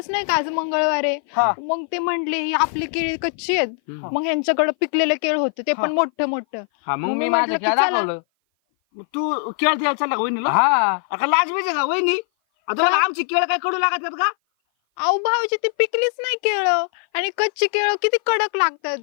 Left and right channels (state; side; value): silent; right; 57 dB below the other